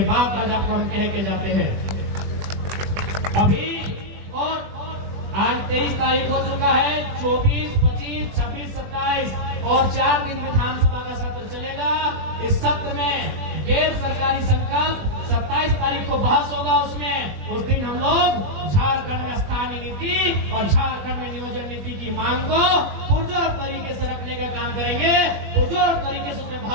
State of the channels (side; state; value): left; late; 20 ms